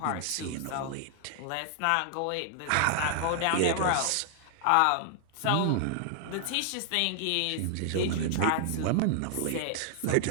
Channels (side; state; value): both; different; correlation 0.00